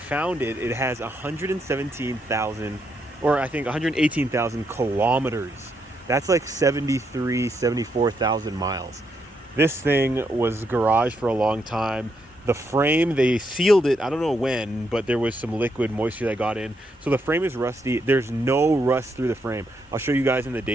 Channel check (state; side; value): normal; both; correlation 0.78